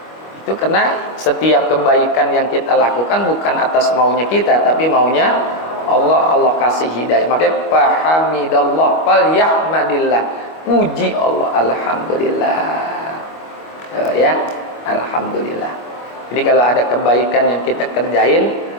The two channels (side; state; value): right; late; 25 ms